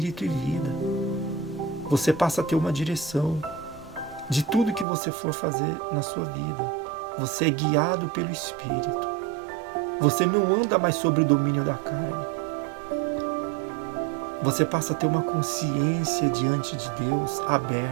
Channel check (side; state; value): left; drops out; at 4.9 s